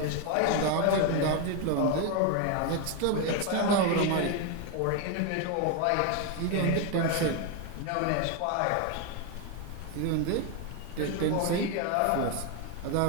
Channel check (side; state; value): both; different; correlation 0.01